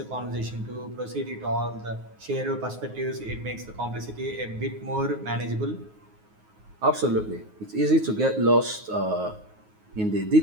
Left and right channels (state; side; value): late; left; 9.5 ms